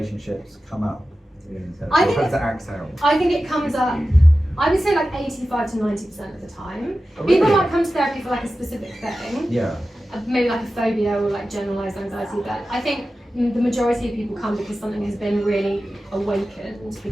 come up? How does it act out? I think it comes up, I would say like 85 to 90% of the time. Oh, really? People might come to therapy for like a specific thing. Yeah. Maybe like a phobia or like generalised anxiety, but I think the majority of people come because something has been really awakened,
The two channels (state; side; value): normal; both; correlation 0.94